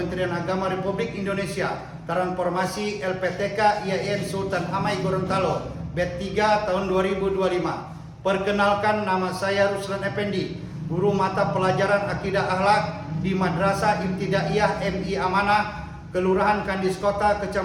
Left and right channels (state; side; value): identical; both; correlation 1.00